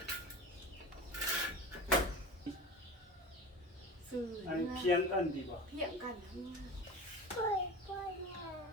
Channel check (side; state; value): both; normal; correlation 0.33